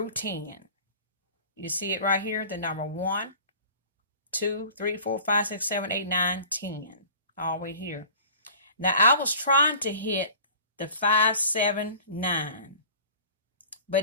10. You see it right here, the number 1, 2, 3, 4, 5, 6, 7, 8, 9, 10. All the way here. Now I was trying to hit the 5, 7, 9.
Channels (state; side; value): inverted; both; correlation -0.43